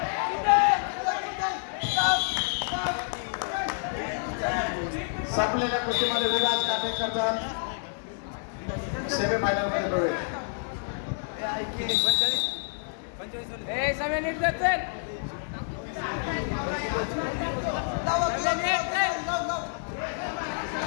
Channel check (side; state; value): right; silent; digital silence